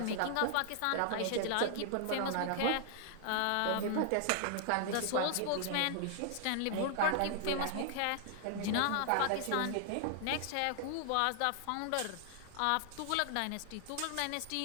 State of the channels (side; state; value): both; different; correlation 0.00